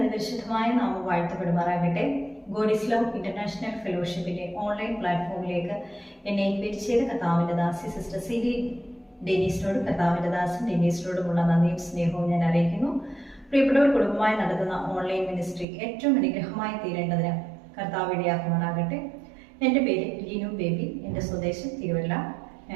നാമം വാഴ്ത്തപ്പെടുമാറാകട്ടെ. ഗോഡ് ഈസ് ലവ് ഇന്റർനാഷണൽ ഫെലോഷിപ്പിന്റെ ഓൺലൈൻ പ്ലാറ്റ്ഫോമിലേക്ക് എന്നെ ഇൻവൈറ്റ് ചെയ്ത കർത്താവിന്റെ ദാസി സിസ്റ്റർ സിലി ഡെനീസിനോടും കർത്താവിന്റെ ദാസൻ ഡെനീസിനോടുമുള്ള നന്ദിയും സ്നേഹവും ഞാൻ അറിയിക്കുന്നു. പ്രിയപ്പെട്ടവർ, കുടുംബമായി നടത്തുന്ന ഓൺലൈൻ മിനിസ്ട്രി ഏറ്റവും അനുഗ്രഹമായി തീരേണ്ടതിന് കർത്താവ് ഇടയാക്കുമാറാകട്ടെ. എൻ്റെ പേര് ലിനു ബേബി. എൻ്റെ സ്വദേശം തിരുവല്ല.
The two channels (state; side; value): drops out; left; at 15.7 s